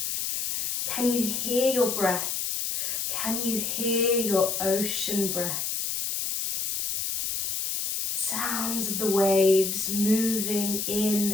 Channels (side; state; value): left; noise; hiss, 1 dB below the sound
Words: Can you hear your breath? Can you hear your ocean breath? Sounds of the waves moving